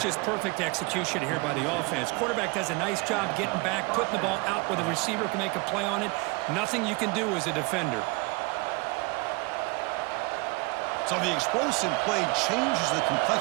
just perfect execution here by the offense. Quarterback does a nice job getting back, putting the ball out where the receiver can make a play on it. Nothing you can do as a defender. So the explosive play changes the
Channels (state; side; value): quieter; left; 26.8 dB